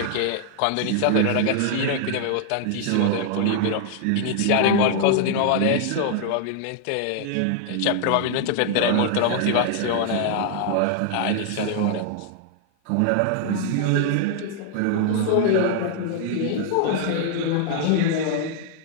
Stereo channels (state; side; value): different; both; correlation 0.00